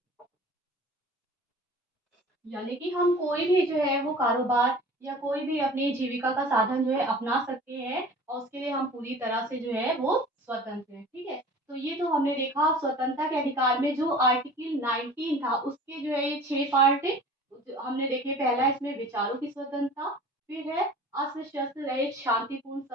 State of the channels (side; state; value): both; normal; correlation 0.43